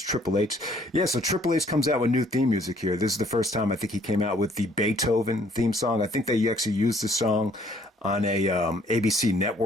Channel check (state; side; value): normal; both; correlation 0.61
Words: Triple H. Yeah, so Triple H comes out with new theme music here. This is the first time I think he came out with the Beethoven theme song. I think they actually used the song on a ABC